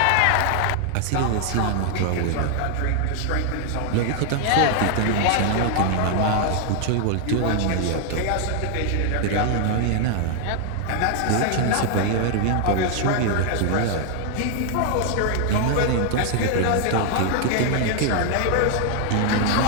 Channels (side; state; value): both; different; correlation 0.00